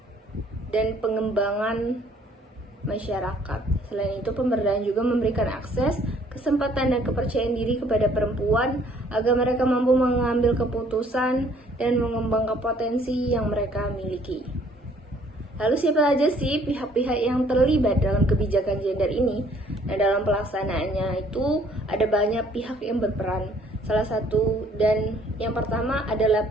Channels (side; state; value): both; normal; correlation 0.60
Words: dan pengembangan masyarakat. Selain itu, pemberdayaan juga memberikan akses, kesempatan, dan kepercayaan diri kepada perempuan agar mereka mampu mengambil keputusan dan mengembangkan potensi yang mereka miliki. Lalu siapa saja sih pihak-pihak yang terlibat dalam kebijakan gender ini? Nah, dalam pelaksanaannya itu ada banyak pihak yang berperan. Salah satu dan yang pertama adalah